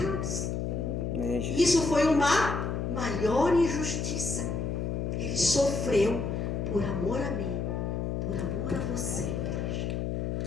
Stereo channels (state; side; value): noise; left; hum, 1 dB below the sound